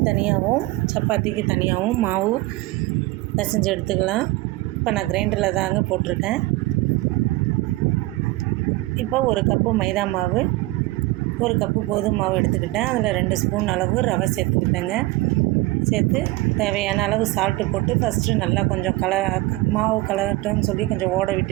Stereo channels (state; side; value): quieter; left; 19.7 dB